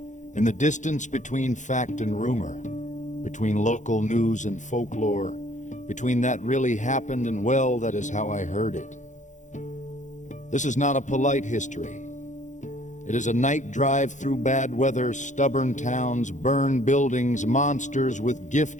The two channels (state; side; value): late; right; 0.35 ms